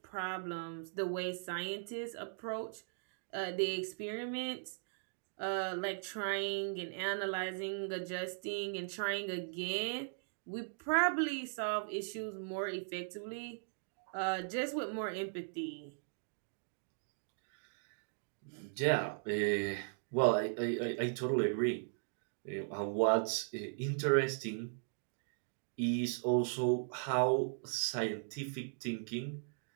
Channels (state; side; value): silent; left; digital silence